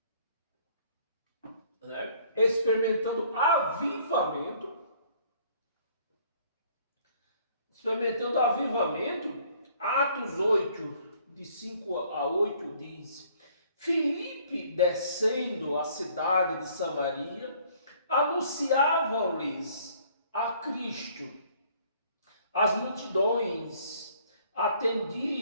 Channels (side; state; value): both; inverted; correlation -0.59